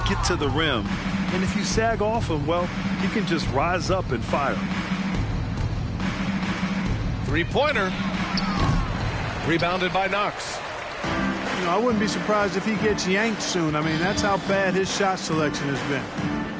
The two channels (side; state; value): both; identical; correlation 1.00